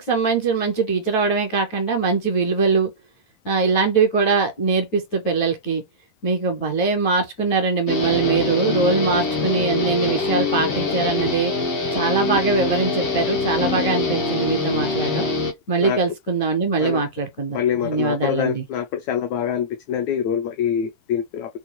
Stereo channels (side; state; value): right; late; 9.1 ms